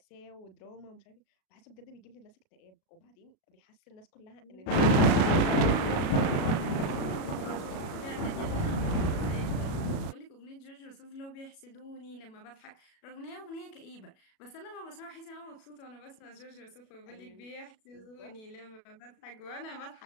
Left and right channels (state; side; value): late; right; 36 ms